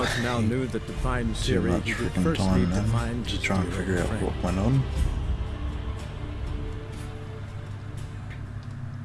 now knew that to find too Ciri, much he would freaking first time need to then find to his try and dear figure old out friend. what went on.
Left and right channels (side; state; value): both; identical; correlation 1.00